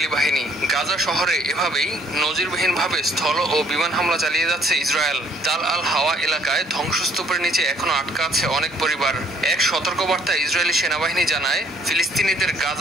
বাহিনী। গাজা শহরে এভাবেই নজিরবিহীনভাবে স্থল ও বিমান হামলা চালিয়ে যাচ্ছে ইসরায়েল। তাল আল হাওয়া এলাকায় ধ্বংসস্তূপের নিচে এখনো আটকা আছে অনেক পরিবার। এক সতর্কবার্তায় ইসরায়েলি সেনাবাহিনী জানায়, ফিলিস্তিনিদের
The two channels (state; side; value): normal; both; correlation 0.62